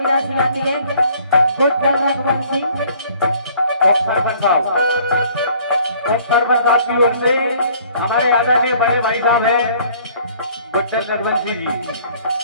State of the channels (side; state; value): both; inverted; correlation -0.57